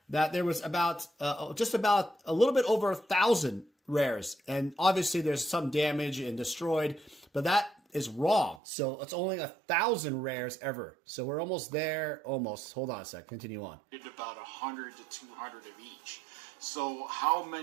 that there was about just about a little bit over 1,000 rares, and obviously there's some damage and destroyed, but that is wrong. So it's only 1,000 rares ever. So we're almost there. Almost. Hold on a sec. Continue on. About 100 to 200 of each. So how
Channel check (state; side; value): drops out; left; at 8.6 s